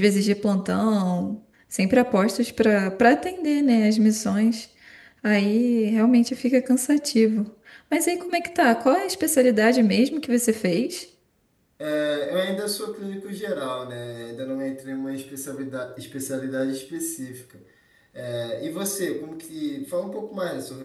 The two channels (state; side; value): identical; both; correlation 1.00